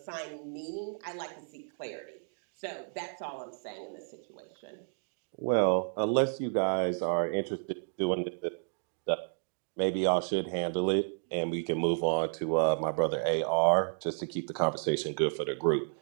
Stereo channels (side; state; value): left; silent; digital silence